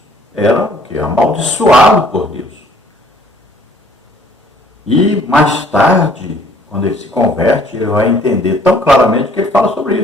era o quê? Amaldiçoado por Deus. E mais tarde, quando ele se converte, ele vai entender tão claramente que ele fala sobre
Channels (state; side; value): normal; both; correlation 0.58